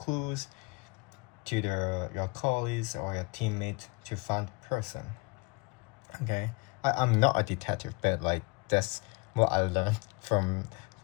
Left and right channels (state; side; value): quieter; right; 28.4 dB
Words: to your colleagues or your teammates to find the person. Okay, I'm not a detective, but like that's what I learned from